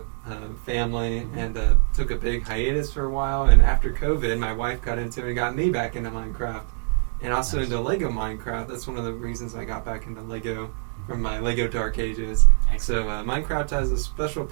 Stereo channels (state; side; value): silent; left; digital silence